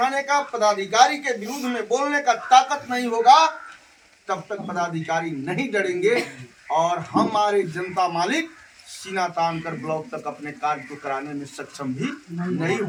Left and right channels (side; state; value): both; identical; correlation 1.00